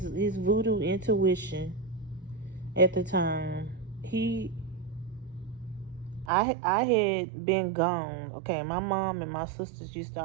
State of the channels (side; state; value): left; drops out; at 6.3 s